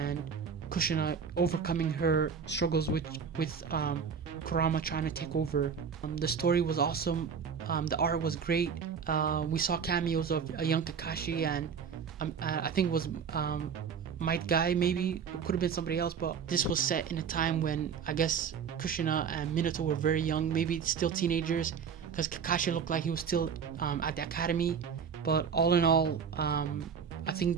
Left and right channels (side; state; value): left; quieter; 6.7 dB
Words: Kushina overcoming her struggles with Kurama trying to take over. The story was awesome. The art was great. We saw cameos of a young Kakashi, and I think it was Might Guy, maybe. It could have been somebody else, but this was set in a time when I guess Kushina and Minato were very young, maybe still teenagers, because Kakashi looked like he was still at the academy. But all in all, I